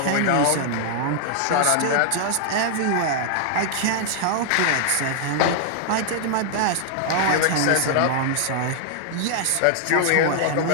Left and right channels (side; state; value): both; different; correlation 0.00